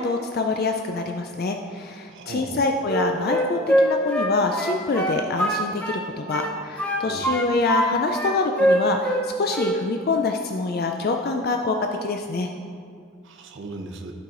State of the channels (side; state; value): both; normal; correlation 0.34